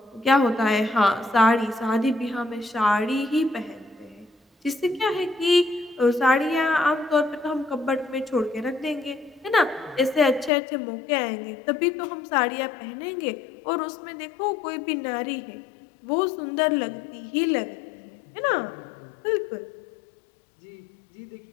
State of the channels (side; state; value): right; drops out; at 10.5 s